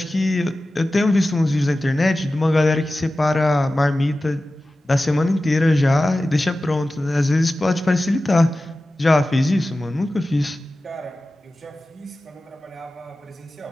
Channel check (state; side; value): normal; both; correlation 0.95